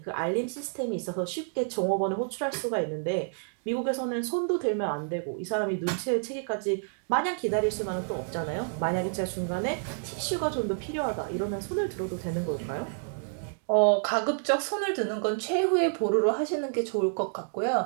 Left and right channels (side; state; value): left; silent; digital silence